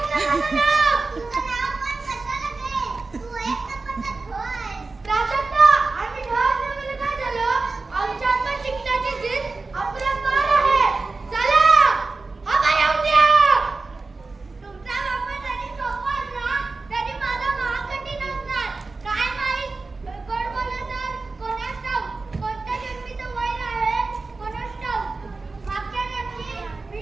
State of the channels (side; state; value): left; quieter; 3.7 dB